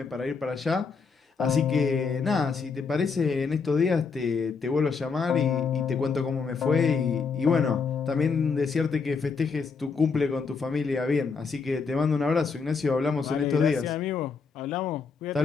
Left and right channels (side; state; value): right; quieter; 5.1 dB